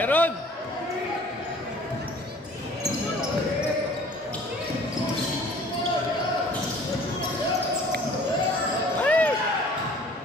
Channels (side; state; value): both; normal; correlation 0.51